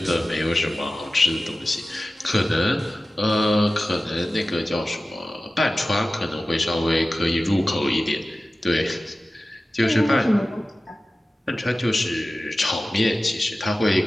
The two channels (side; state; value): both; normal; correlation 0.96